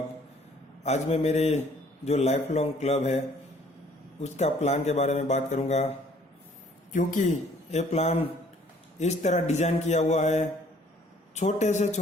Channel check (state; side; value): normal; both; correlation 0.58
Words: आज मैं मेरे जो लाइफ लॉन्ग क्लब है उसका प्लान के बारे में बात करूंगा, क्योंकि ये प्लान इस तरह डिजाइन किया हुआ है। छोटे से